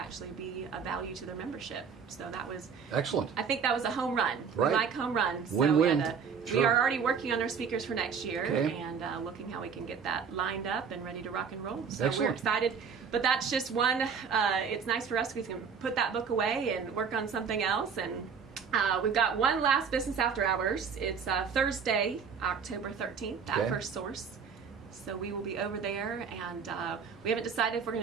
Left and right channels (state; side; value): quieter; left; 6.4 dB